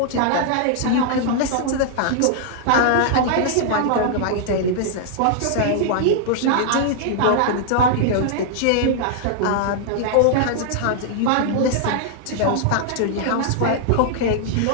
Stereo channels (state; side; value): different; both; correlation -0.01